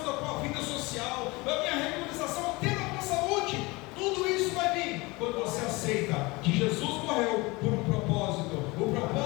da tua vida social, vai haver a regularização até da tua saúde. Tudo isso vai vir quando você aceita que Jesus morreu por um propósito. O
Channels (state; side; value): quieter; right; 24.0 dB